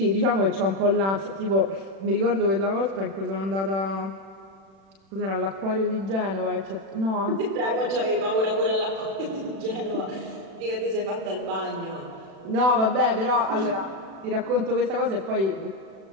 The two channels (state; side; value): late; left; 36 ms